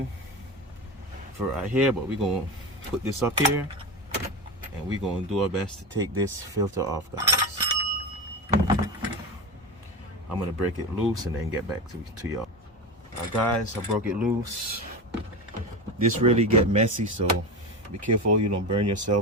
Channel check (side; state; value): both; normal; correlation 0.22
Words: for right here, but we're gonna put this up here and we're gonna do our best to take this filter off, guys. I'm gonna break it loose and then get back to y'all. Guys, I broke it loose. This really get messy, so be careful you don't burn